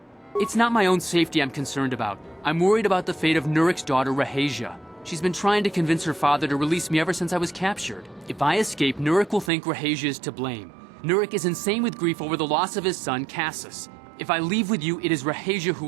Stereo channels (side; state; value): left; drops out; at 9.5 s